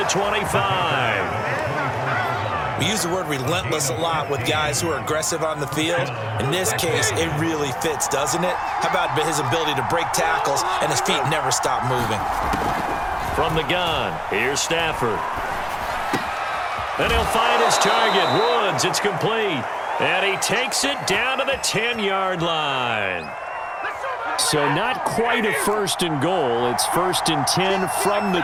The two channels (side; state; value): both; identical; correlation 1.00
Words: 25. We use the word relentless a lot with guys who are aggressive on the field. In this case, it really fits, doesn't it? How about his ability to break tackles and his feet never stop moving? From the gun, here's Stafford. And he'll find his target, Woods. It's complete. And he takes it down to the 10-yard line. So not quite a 1st and goal. It's 1st and 10 from the